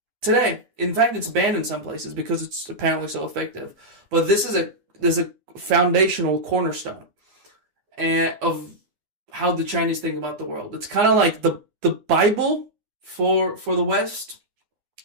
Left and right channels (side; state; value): left; late; 9.7 ms